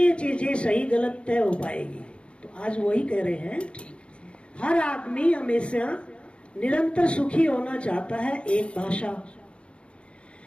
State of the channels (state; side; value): late; right; 0.058 ms